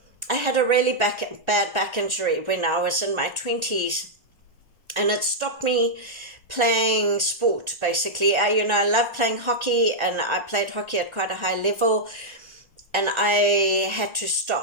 had a really bad back injury when I was in my 20s, and it stopped me playing sport, basically. I love playing hockey, and I played hockey at quite a high level, and I had to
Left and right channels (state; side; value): late; left; 1.3 ms